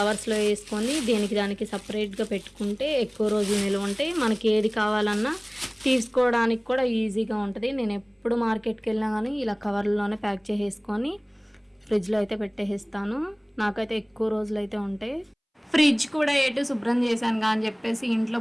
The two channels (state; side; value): identical; both; correlation 1.00